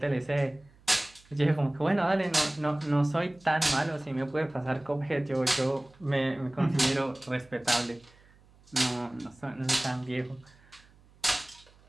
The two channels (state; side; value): noise; right; hum, 28 dB below the sound